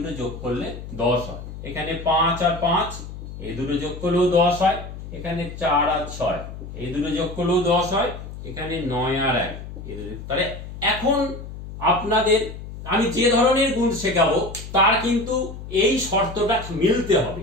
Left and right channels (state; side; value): noise; left; hum, 11 dB below the sound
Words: যোগ করলে 10 হয়। এখানে 5 আর 5 এই দুটো যোগ করলেও 10 হয়। এখানে 4 আর 6 এই দুটো যোগ করলেও 10 হয়। এখানে 9 আর 1 এই দুটো। তাহলে এখন আপনাদের আমি যে ধরনের গুণ শেখাবো তার কিন্তু এই শর্তটা মিলতে হবে,